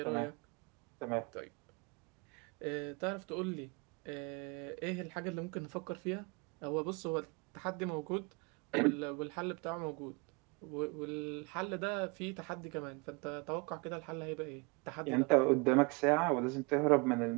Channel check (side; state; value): left; quieter; 28.5 dB